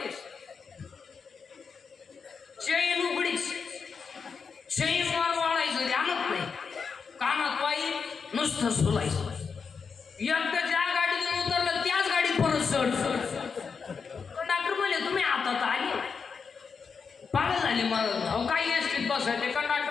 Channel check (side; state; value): right; quieter; 5.6 dB